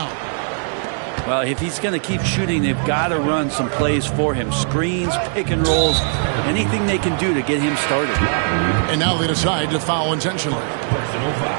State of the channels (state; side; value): silent; left; digital silence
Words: Well, if he's going to keep shooting, they've got to run some plays for him. Screens, pick and rolls, anything they can do to get him started. And now they decide to foul intentionally.